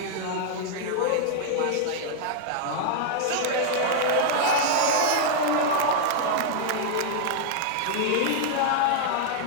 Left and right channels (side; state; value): both; different; correlation -0.01